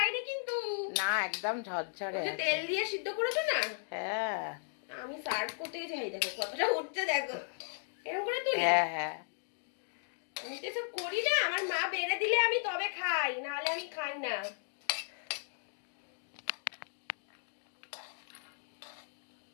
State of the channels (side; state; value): right; silent; digital silence